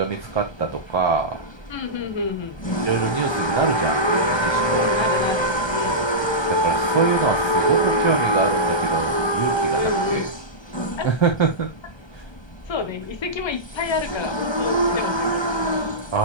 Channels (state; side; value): late; right; 1.3 ms